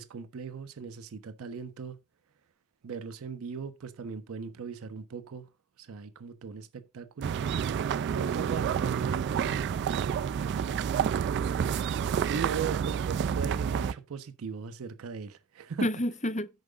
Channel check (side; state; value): left; quieter; 6.2 dB